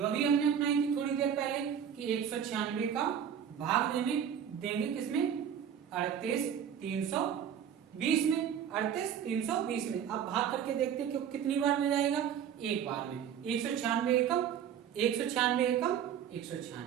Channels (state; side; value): quieter; left; 8.7 dB